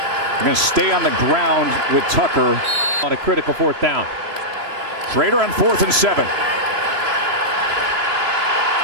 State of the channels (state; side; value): late; left; 3.0 ms